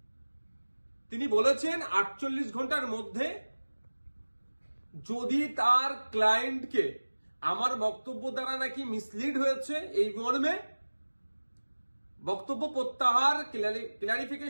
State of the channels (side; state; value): both; inverted; correlation -1.00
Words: তিনি বলেছেন 48 ঘন্টার মধ্যে যদি তার ক্লায়েন্টকে আমার বক্তব্য দ্বারা নাকি মিসলিড হয়েছে এই মর্মে বক্তব্য প্রত্যাহার,